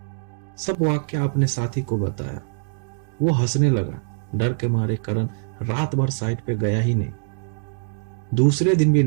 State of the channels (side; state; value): left; silent; digital silence